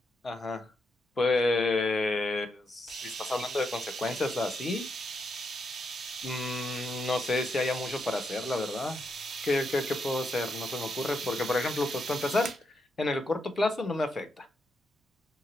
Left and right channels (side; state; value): both; normal; correlation 0.82